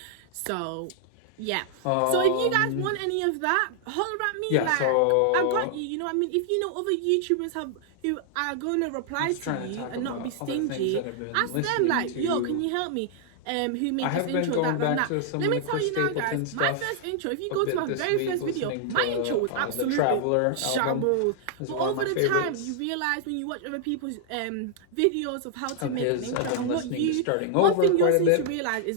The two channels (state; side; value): different; both; correlation -0.01